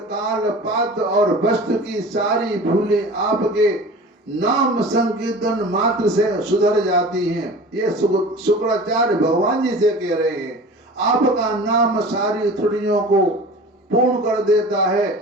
काल पात्र और वस्तु की सारी भूलें आपके नाम संकीर्तन मात्र से सुधर जाती हैं। ये शुक्राचार्य भगवान जी से कह रहे हैं। आपका नाम सारी त्रुटियों को पूर्ण कर देता है।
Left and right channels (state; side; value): normal; both; correlation 0.39